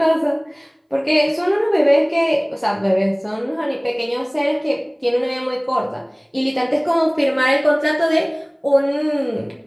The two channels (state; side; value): identical; both; correlation 1.00